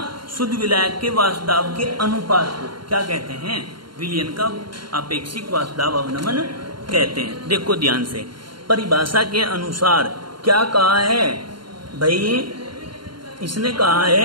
शुद्ध विलायक के वाष्पदाब के अनुपात को क्या कहते हैं, विलयन का अपेक्षिक वाष्पदाब अवनमन कहते हैं। देखो ध्यान से, परिभाषा के अनुसार क्या कहा है भाई, इसने कहा है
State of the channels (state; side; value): late; left; 0.72 ms